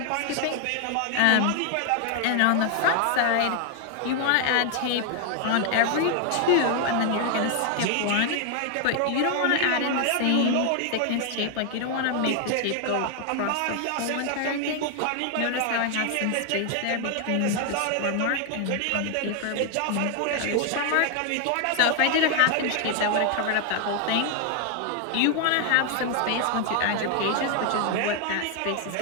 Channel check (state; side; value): different; both; correlation 0.00